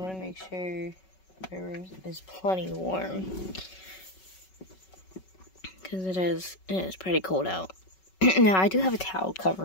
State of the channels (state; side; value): late; right; 5.3 ms